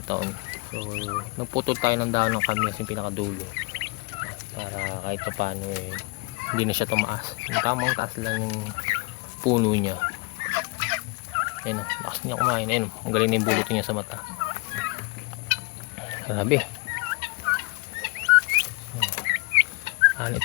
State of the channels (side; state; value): right; quieter; 27.0 dB